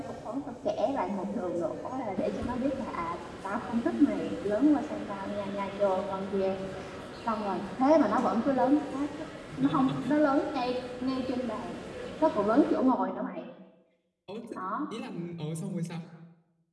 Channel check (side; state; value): both; identical; correlation 1.00